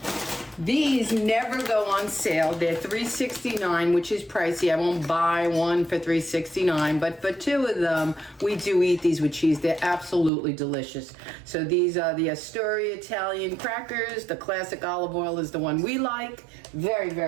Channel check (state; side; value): drops out; left; at 10.3 s